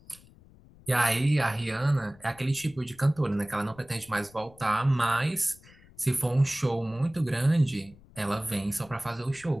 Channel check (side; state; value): left; noise; rumble, 25 dB below the sound